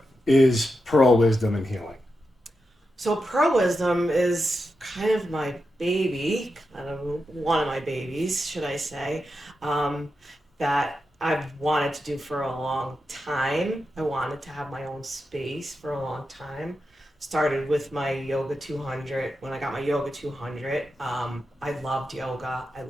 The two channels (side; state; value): both; normal; correlation 0.88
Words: is Pearl Wisdom and Healing? So, Pearl Wisdom is kind of my baby, kind of one of my babies, should I say, that I've wanted to do for a long time. I wanted to have my own space for a long time. Started with my Yoga 200. When I got my Yoga 200, I loved yoga. I